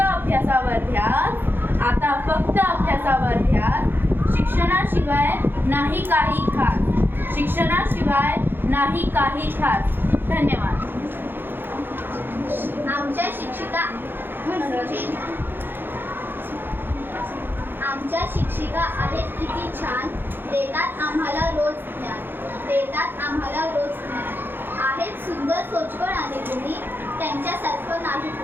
ध्यास, आता फक्त अभ्यासावर ध्यास. शिक्षणाशिवाय नाही काही खास, शिक्षणाशिवाय नाही काही खास. धन्यवाद. आमच्या शिक्षिका आमच्या शिक्षिका आहेत किती छान, देतात आम्हाला रोज ज्ञान, देतात आम्हाला रोज ज्ञान. आहेत सुंदर सोचवळ आणि गुणी, त्यांच्यासारखं नाही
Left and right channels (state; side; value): late; left; 0.10 ms